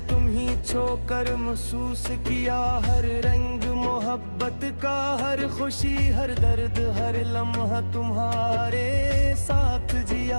तुम ही छोकर महसूस किया हर रंग मोहब्बत का, हर खुशी हर दर्द हर लम्हा तुम्हारे साथ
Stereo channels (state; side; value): inverted; both; correlation -1.00